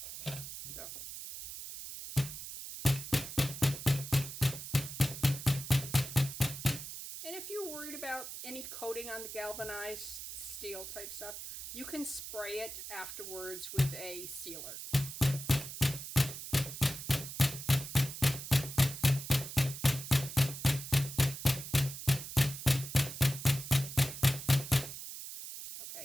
So. And if you're worried about any coating on the galvanized steel type stuff, you can spray it afterwards with a sealer.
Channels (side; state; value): right; noise; hiss, 9 dB below the sound